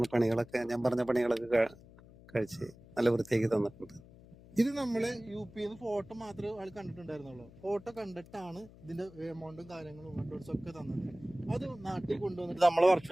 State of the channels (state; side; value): noise; left; hum, 21 dB below the sound